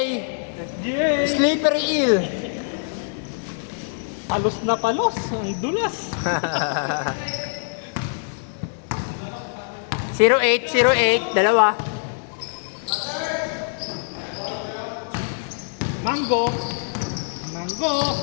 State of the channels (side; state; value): right; silent; 63 dB below the other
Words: SGA! Slippery eel. Palos na palos! Ang dulas! 08, 08, dalawa. Mango! Mango!